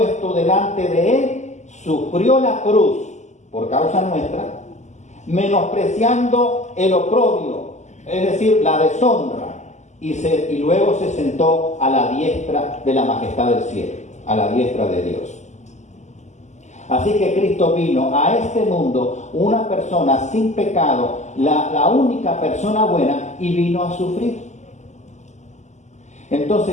delante de él, sufrió la cruz por causa nuestra, menospreciando el oprobio, es decir, la deshonra, y luego se sentó a la diestra de la majestad del cielo, a la diestra de Dios. Así que Cristo vino a este mundo, una persona sin pecado, la única persona buena, y vino a sufrir. Entonces,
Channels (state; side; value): late; right; 0.34 ms